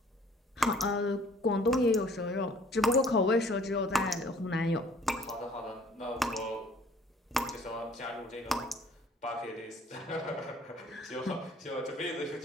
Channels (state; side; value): normal; both; correlation 0.56